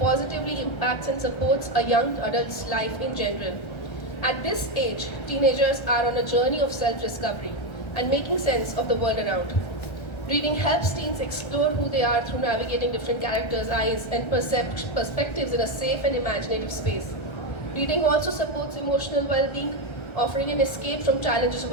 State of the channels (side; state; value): right; late; 1.3 ms